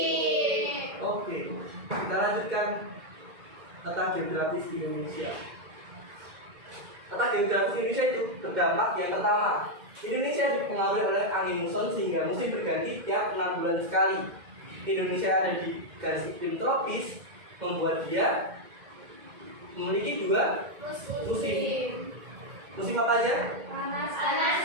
Oke, kita lanjutkan letak geografis Indonesia. Letak geografis Indonesia itu terdampak yang pertama, Indonesia dipengaruhi oleh angin muson sehingga musim berganti tiap 6 bulan sekali. Indonesia ada di garis iklim tropis membuat dia memiliki 2 musim. Musim apa aja? Panas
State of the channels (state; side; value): late; left; 2.1 ms